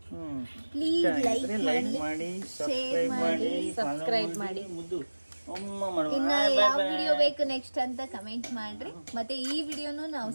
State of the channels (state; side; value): inverted; both; correlation -1.00